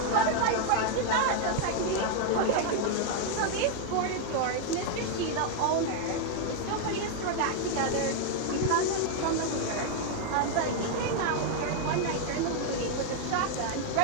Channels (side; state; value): both; different; correlation 0.00